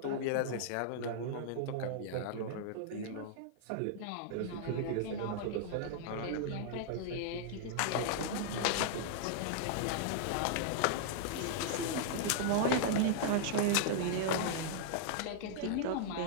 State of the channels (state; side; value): different; both; correlation -0.01